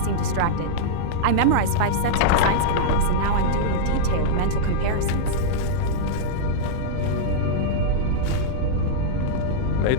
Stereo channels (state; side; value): different; both; correlation -0.02